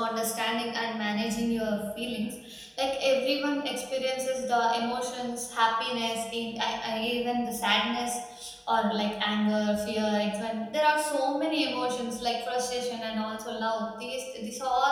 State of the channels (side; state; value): both; identical; correlation 1.00